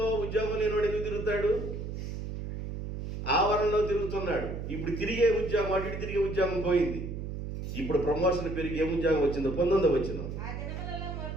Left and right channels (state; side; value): noise; right; hum, 6 dB below the sound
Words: ఉద్యోగం లేనివాడు ఎందుకు తిరుగుతాడు? ఆవరణలో తిరుగుతున్నాడు. ఇప్పుడు తిరిగే ఉద్యోగం, అటు తిరిగే ఉద్యోగం పోయింది. ఇప్పుడు ప్రమోషన్ పెరిగి ఏ ఉద్యోగం వచ్చిందో? 19 వచ్చిందో.